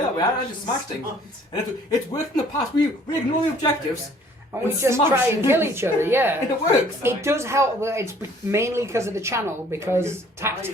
that way. I just smash things. And it's worked in the past. We ignore the objectives. And we and just smash. try and kill each other, yeah. And it works. It does help, but it's mainly because of the channel, because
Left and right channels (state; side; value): normal; both; correlation 0.57